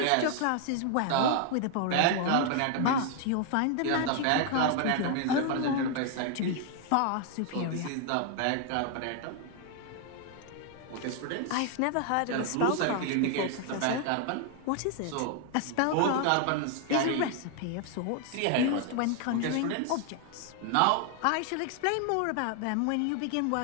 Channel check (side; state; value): both; different; correlation 0.00